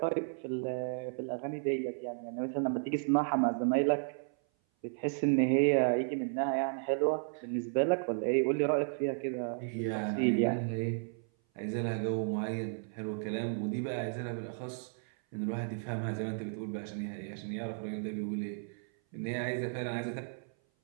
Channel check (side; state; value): left; silent; 55 dB below the other